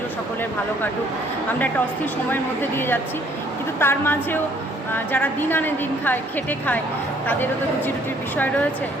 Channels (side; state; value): both; normal; correlation 0.62